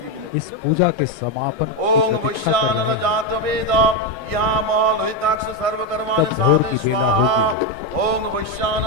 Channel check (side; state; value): left; late; 1.6 ms